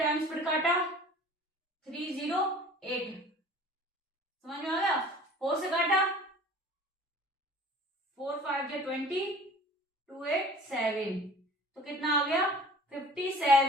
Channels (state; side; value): normal; both; correlation 0.46